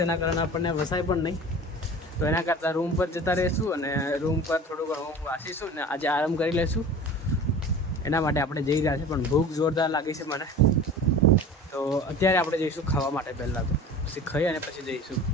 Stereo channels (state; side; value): normal; both; correlation 0.38